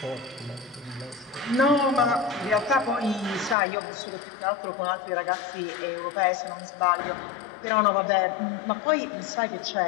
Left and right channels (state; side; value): drops out; right; at 3.6 s